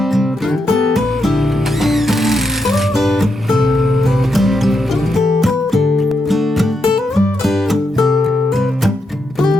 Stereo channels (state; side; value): normal; both; correlation 0.83